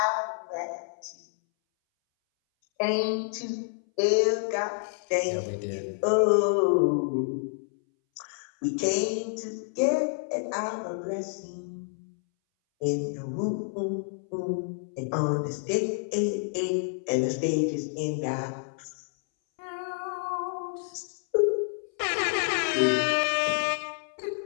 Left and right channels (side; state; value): right; silent; 59 dB below the other